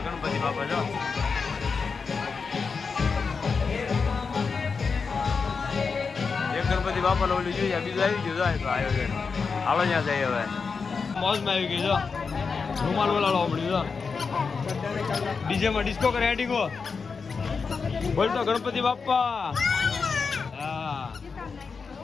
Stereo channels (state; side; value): quieter; right; 5.1 dB